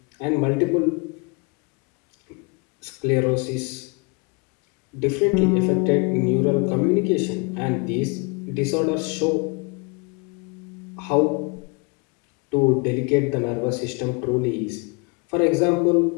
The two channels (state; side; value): quieter; right; 30.6 dB